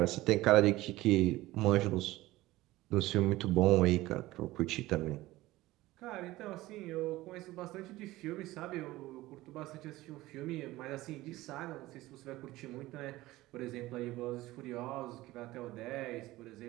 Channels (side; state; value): left; quieter; 17.9 dB